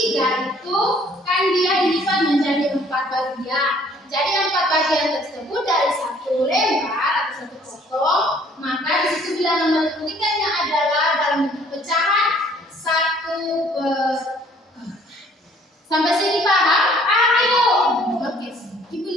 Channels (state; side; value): normal; both; correlation 0.58